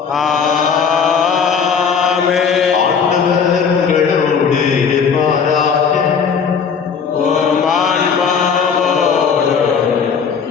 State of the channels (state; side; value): quieter; right; 6.3 dB